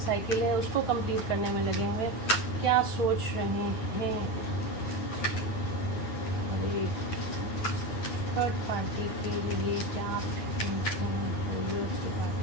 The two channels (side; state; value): right; late; 9.4 ms